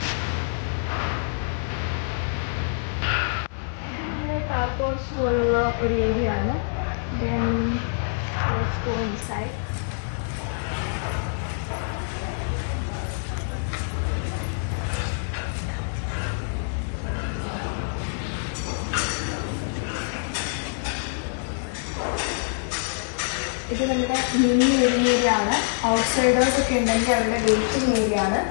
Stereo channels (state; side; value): silent; right; digital silence